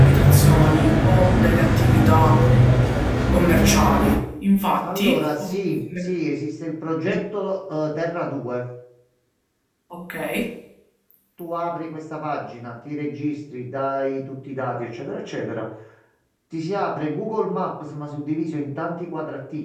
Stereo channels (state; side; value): identical; both; correlation 1.00